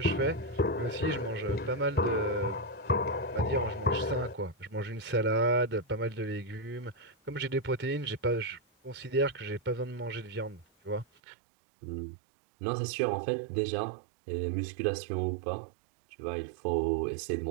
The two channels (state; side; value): drops out; left; at 11.1 s